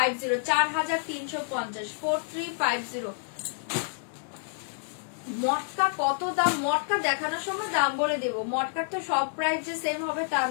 4350, 4350। মটকা কত দাম, মটকা দেখানোর সময় দাম বলে দেবো, মটকার তো সব প্রাইস যে সেম হবে তা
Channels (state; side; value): silent; right; digital silence